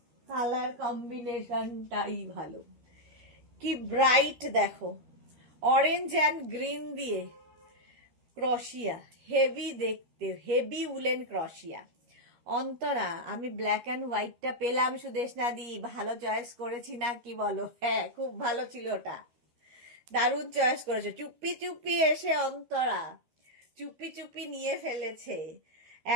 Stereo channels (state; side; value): late; left; 13 ms